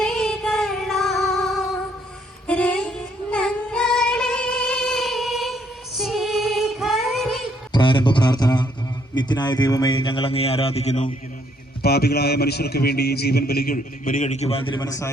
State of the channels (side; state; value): both; normal; correlation 0.69